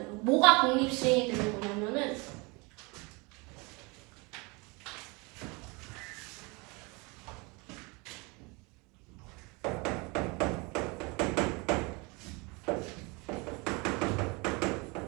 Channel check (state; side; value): quieter; left; 27.9 dB